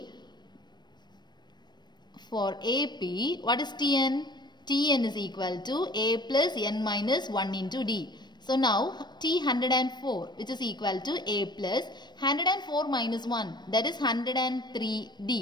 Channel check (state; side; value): late; right; 0.21 ms